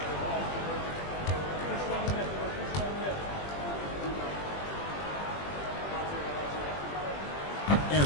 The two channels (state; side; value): late; right; 20 ms